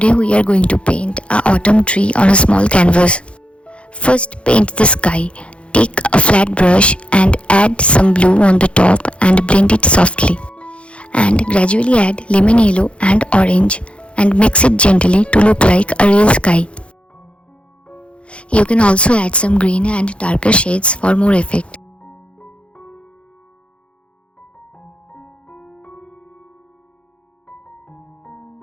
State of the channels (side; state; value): right; late; 0.060 ms